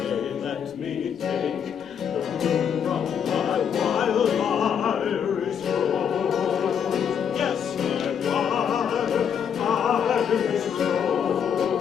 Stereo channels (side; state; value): right; quieter; 7.9 dB